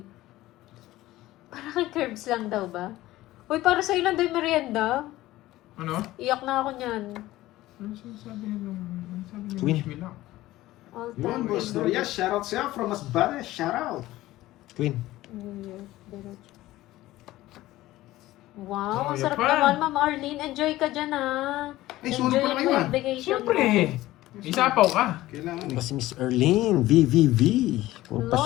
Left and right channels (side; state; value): right; quieter; 16.5 dB